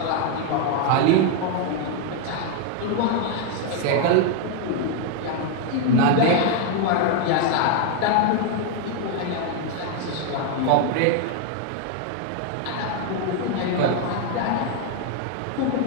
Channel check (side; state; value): both; different; correlation 0.01